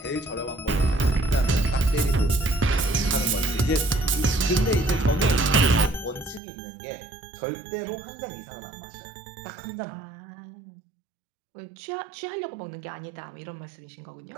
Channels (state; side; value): drops out; left; at 6.4 s